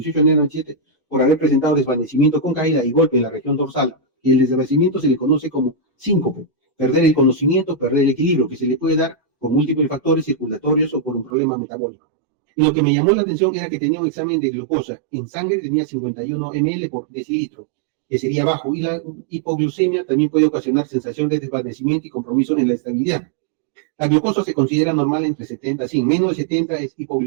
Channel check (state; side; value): drops out; left; at 11.3 s